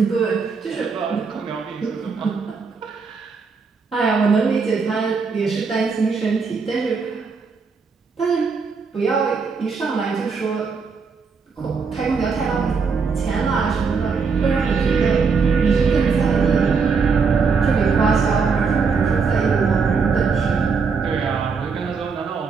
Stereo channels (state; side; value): quieter; left; 5.2 dB